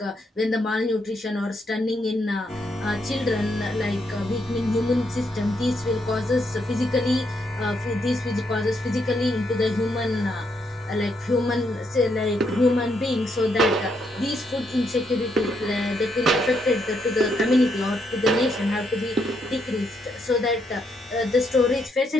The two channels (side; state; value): both; normal; correlation 0.77